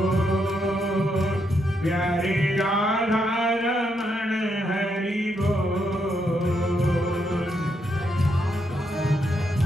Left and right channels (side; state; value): both; normal; correlation 0.79